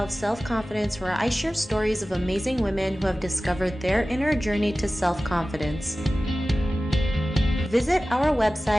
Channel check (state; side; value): normal; both; correlation 0.96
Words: of Self-Confidence, where I share stories of amazing women who have discovered their inner journey to self-confidence. Visit our